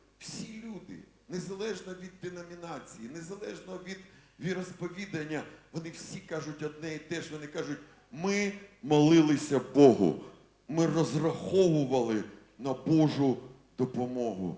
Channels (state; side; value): identical; both; correlation 1.00